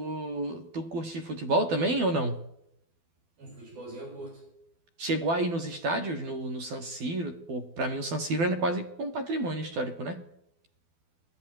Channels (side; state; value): left; late; 12 ms